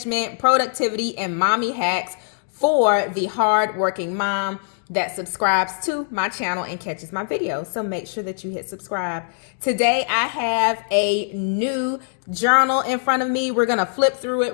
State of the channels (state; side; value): silent; right; digital silence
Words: productivity, and mommy hacks for the hardworking mom that subscribes to my channel and catches my videos. So make sure that you hit subscribe. Today, I have a new journal in front of me. We're going to flip through